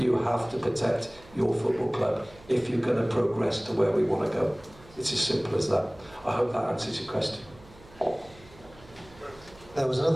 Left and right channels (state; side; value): noise; right; hum, 23 dB below the sound